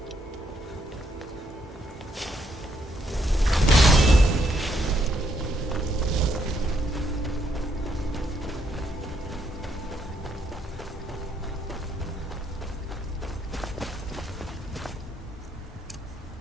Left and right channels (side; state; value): both; normal; correlation 0.74